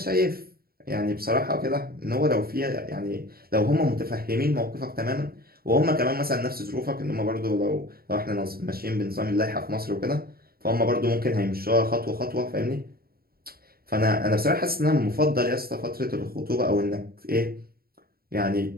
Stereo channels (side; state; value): left; late; 0.44 ms